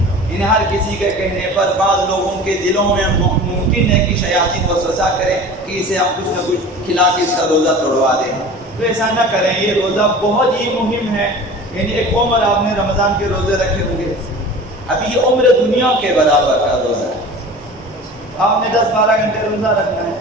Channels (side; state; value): both; normal; correlation 0.39